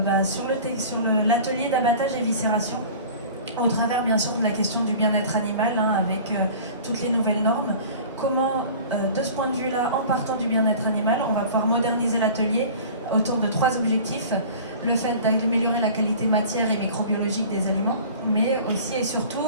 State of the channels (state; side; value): inverted; both; correlation -0.42